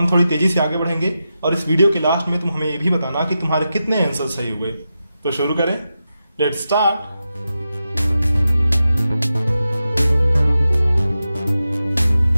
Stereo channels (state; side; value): inverted; both; correlation -0.90